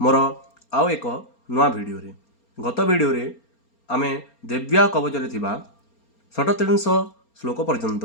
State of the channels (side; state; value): right; late; 4.3 ms